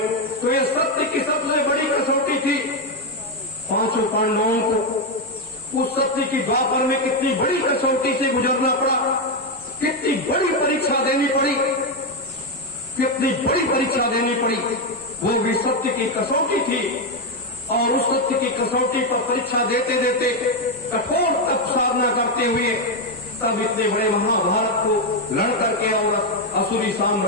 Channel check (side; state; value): both; normal; correlation 0.05